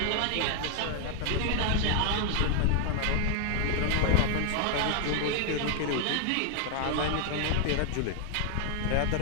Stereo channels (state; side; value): different; both; correlation 0.00